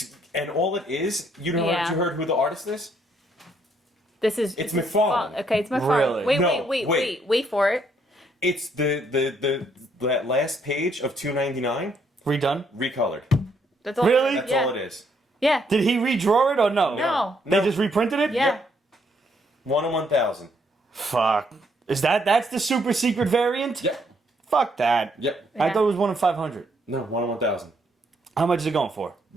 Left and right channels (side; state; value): both; normal; correlation 0.71